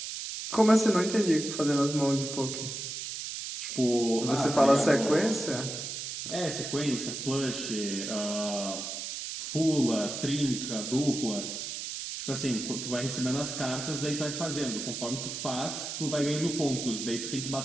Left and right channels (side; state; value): right; noise; hiss, 6 dB below the sound